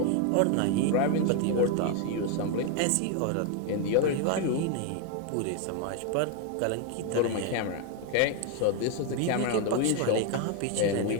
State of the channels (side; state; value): both; different; correlation 0.01